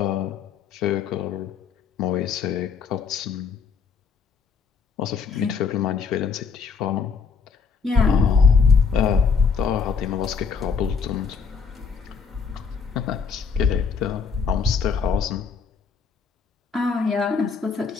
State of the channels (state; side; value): quieter; right; 5.7 dB